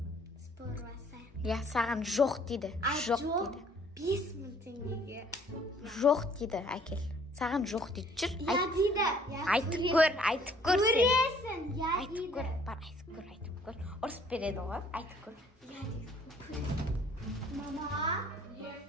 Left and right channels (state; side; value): normal; both; correlation 0.59